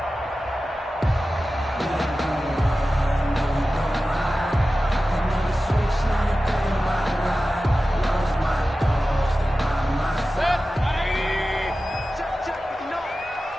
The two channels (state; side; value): normal; both; correlation 0.95